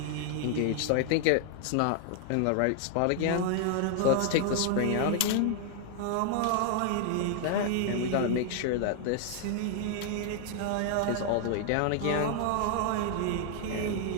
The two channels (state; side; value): different; both; correlation 0.00